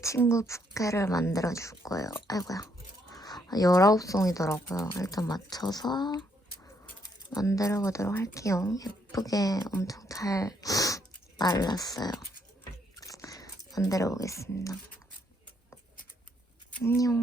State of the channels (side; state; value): both; normal; correlation 0.72